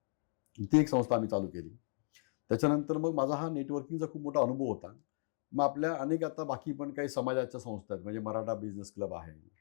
ती एक संस्था आम्ही चालू केली. त्याच्यानंतर मग माझा हा नेटवर्किंगचा खूप मोठा अनुभव होता. मग आपल्या अनेक आता बाकी पण काही समाजाच्या संस्था आहेत, म्हणजे मराठा बिझनेस क्लब आहे,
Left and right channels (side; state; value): right; silent; digital silence